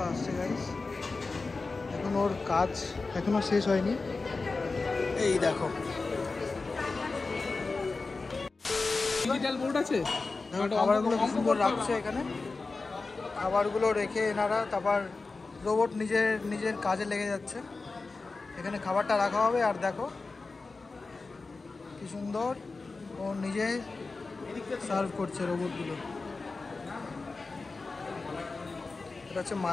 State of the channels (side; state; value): right; quieter; 3.9 dB